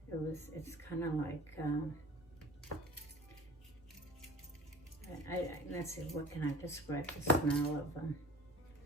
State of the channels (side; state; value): both; normal; correlation 0.41